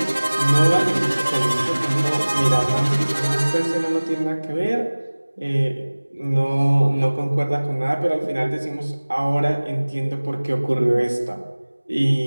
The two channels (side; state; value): both; inverted; correlation -1.00